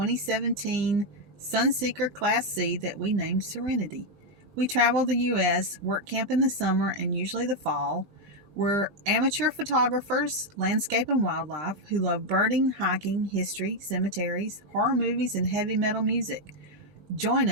Sunseeker Class C that we named Serenity. We travel the U.S., work camp in the summer and usually the fall. We're amateur photographers, landscape and wildlife, who love birding, hiking, history, cemeteries, horror movies, and heavy metal music. Join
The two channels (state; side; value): late; left; 16 ms